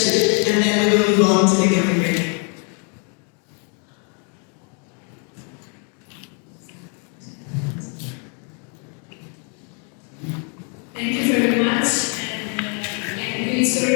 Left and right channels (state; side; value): quieter; right; 39.2 dB